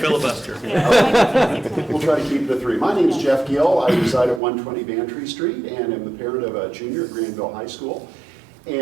Yeah, we might consider 6 minutes. We'll try to keep it to 3. My name is Jeff Gill. I reside at 120 Bantry Street and am the parent of a junior at Granville High School.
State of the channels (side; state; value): left; drops out; at 4.4 s